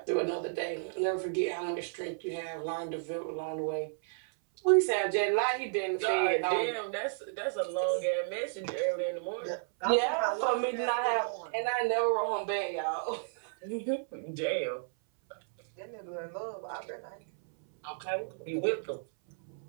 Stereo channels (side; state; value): left; silent; 56 dB below the other